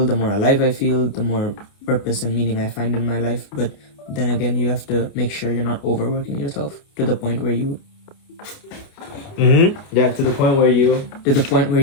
the more alive I feel, the more purpose and meaning I find in my life. But then again, you have to make sure you're not overworking yourself to the point where you... to the point where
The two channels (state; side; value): late; right; 29 ms